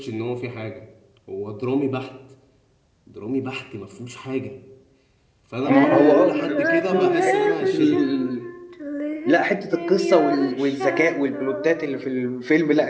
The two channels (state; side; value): identical; both; correlation 1.00